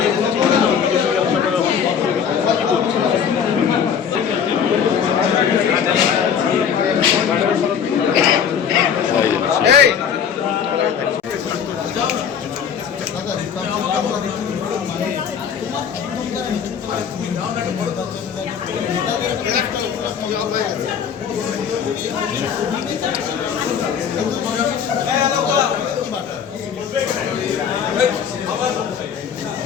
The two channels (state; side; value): quieter; right; 7.6 dB